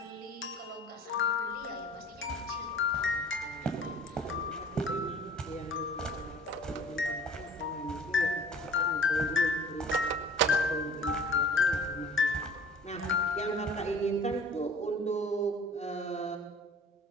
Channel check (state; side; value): normal; both; correlation 0.48